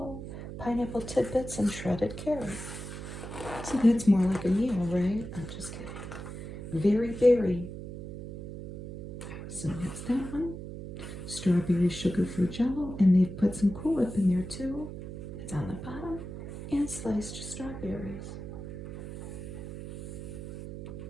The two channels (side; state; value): right; noise; hum, 9 dB below the sound